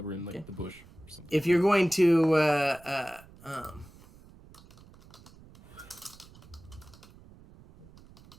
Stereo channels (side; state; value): right; noise; rumble, 23 dB below the sound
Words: were in the bush or something. If you're going to